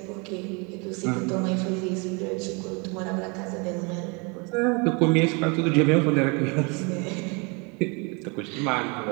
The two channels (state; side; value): quieter; left; 31.2 dB